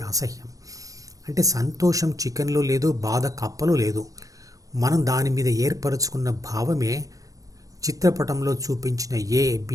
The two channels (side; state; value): left; late; 0.17 ms